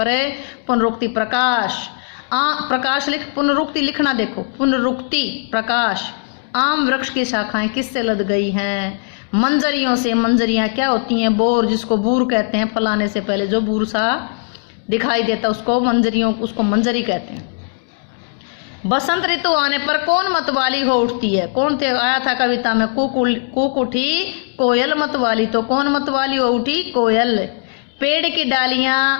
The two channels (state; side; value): silent; right; digital silence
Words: है पुनरुक्ति। प्रकाश। प्रकाश लिख, पुनरुक्ति लिखना। देखो, पुनरुक्ति प्रकाश। आम वृक्ष की शाखाएं किससे लद गई हैं? मंजरियों से। मंजरियां क्या होती हैं? बोर, जिसको बूर कहते हैं। फलाने से पहले जो बूर सा दिखाई देता उसको मंजरी कहते हैं। बसंत ऋतु आने पर कौन मतवाली हो उठती है? कौन थे? आया था कविता में। कूक उठी कोयल मतवाली। तो कौन मतवाली हो उठी? कोयल। पेड़ की डालियां